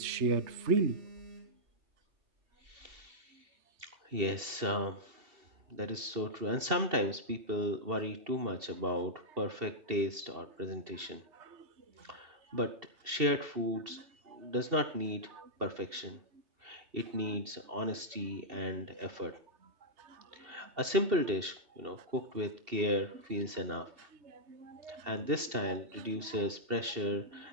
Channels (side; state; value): left; late; 2.7 ms